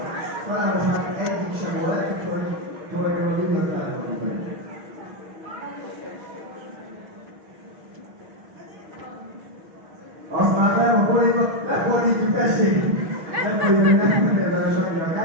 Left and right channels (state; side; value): late; left; 6.3 ms